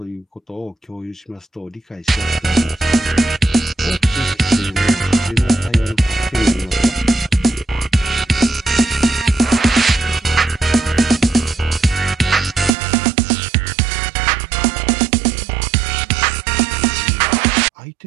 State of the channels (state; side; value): drops out; left; at 12.8 s